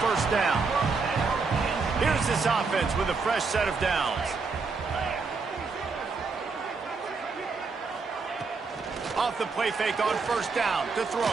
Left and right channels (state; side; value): quieter; left; 4.5 dB